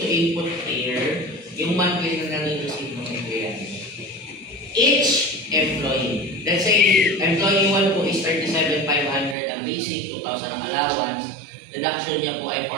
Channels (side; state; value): left; drops out; at 9.3 s